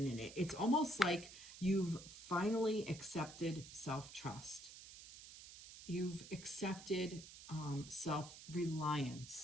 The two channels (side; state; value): right; noise; hiss, 15 dB below the sound